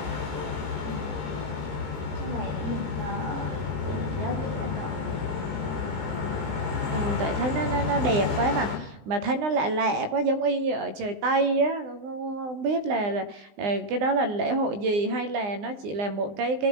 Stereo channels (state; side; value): late; left; 20 ms